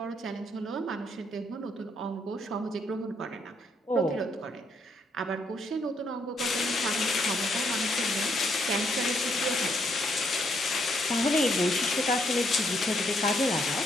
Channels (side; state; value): both; normal; correlation 0.73